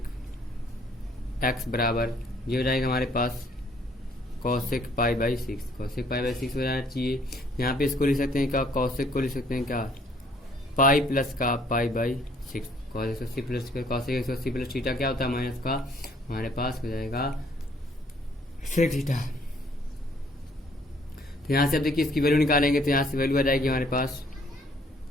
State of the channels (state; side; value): normal; both; correlation 0.62